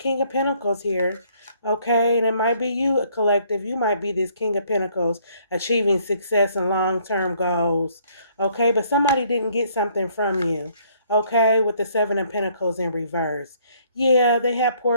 of Pentacles here, okay? And it might be you, a collective. You might be this King of Pentacles achieving success and long-term goals, okay? But somebody didn't get something from you, okay? With the Seven of Pentacles in reverse. Yeah, they have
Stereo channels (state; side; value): inverted; both; correlation -0.64